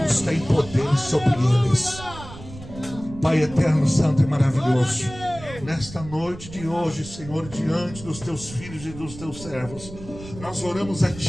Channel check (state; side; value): noise; right; rumble, 15 dB below the sound